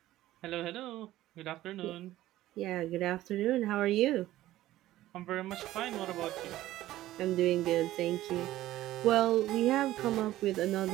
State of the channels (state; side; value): quieter; left; 15.0 dB